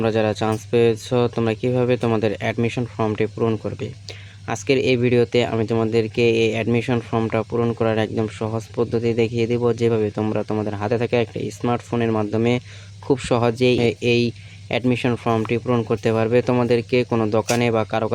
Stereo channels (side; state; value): both; identical; correlation 1.00